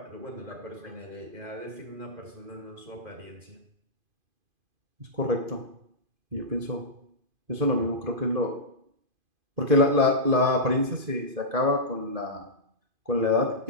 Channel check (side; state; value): left; late; 2.5 ms